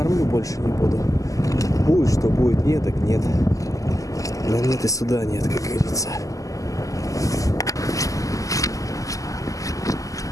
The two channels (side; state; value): right; late; 0.16 ms